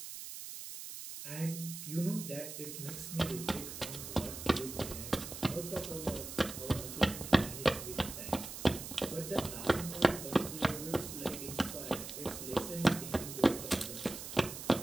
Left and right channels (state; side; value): noise; right; hiss, 9 dB below the sound